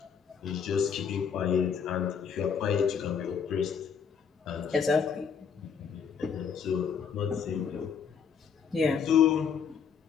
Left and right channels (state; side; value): quieter; right; 6.8 dB